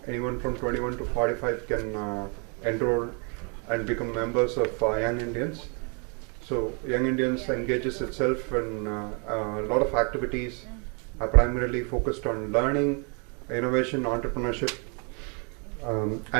anyone from 21 to 45 can enroll and become members of Young Indians. So Young Indians engages itself in a lot of activities, primarily focused on learning, innovation, entrepreneurship,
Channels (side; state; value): left; quieter; 36.3 dB